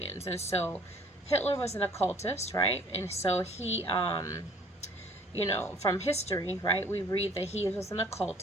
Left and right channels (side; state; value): both; normal; correlation 0.55